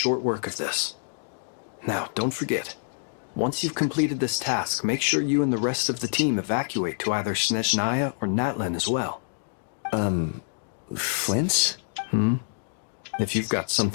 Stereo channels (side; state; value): right; silent; digital silence